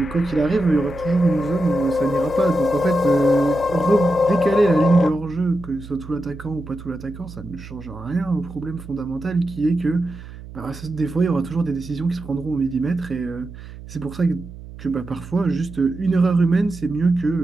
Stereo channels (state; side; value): noise; right; hum, 15 dB below the sound